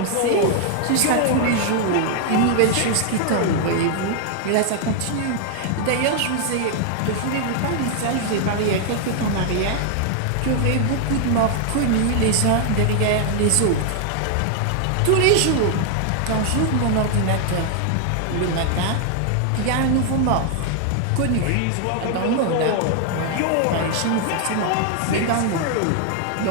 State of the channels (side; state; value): both; different; correlation 0.00